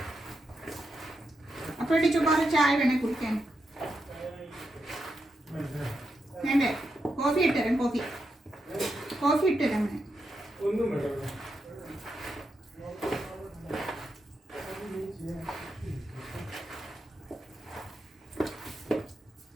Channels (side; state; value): both; normal; correlation 0.85